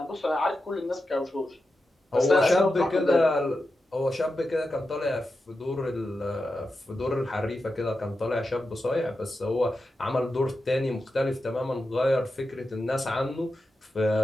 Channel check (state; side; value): normal; both; correlation 0.90